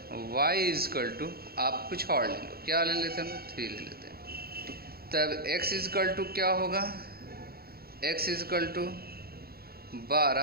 y इजकल टू, आप कुछ और ले लो, क्या ले लेते हैं हम 3 ले लेते हैं, तब x इजकल टू क्या होगा, x is equal to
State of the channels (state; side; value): late; left; 0.45 ms